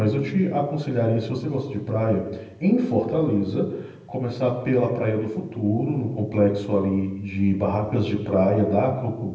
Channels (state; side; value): identical; both; correlation 1.00